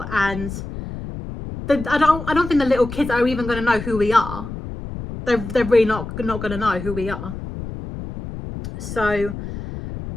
And I don't think the little kids are even going to know who we are. They're really not going to know who we are. So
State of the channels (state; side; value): noise; left; rumble, 9 dB below the sound